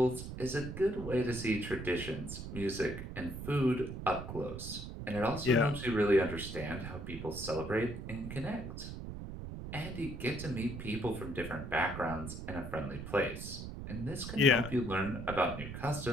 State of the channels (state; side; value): noise; right; rumble, 8 dB below the sound